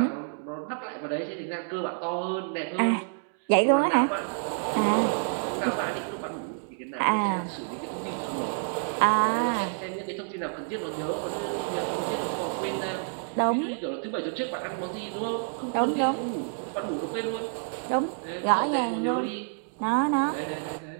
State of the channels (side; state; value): left; silent; digital silence